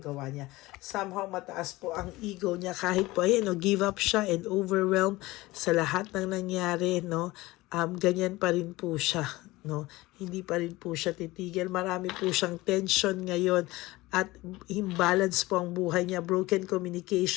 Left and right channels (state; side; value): quieter; right; 19.8 dB